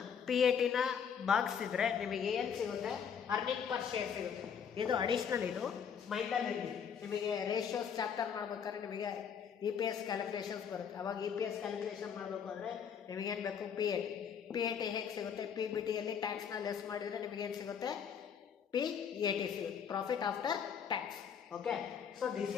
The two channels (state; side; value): quieter; right; 7.4 dB